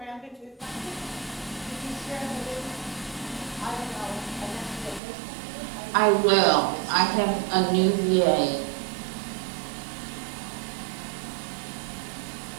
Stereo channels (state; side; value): drops out; left; at 5.0 s